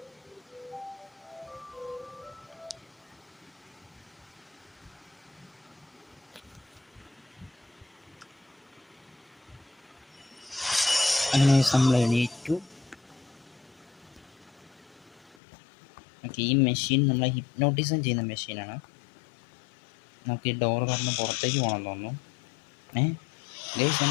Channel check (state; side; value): drops out; right; at 15.4 s